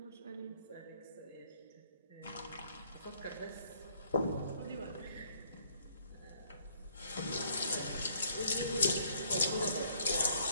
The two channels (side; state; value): both; inverted; correlation -0.64